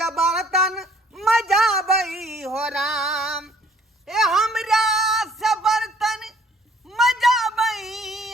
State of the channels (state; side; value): normal; both; correlation 0.59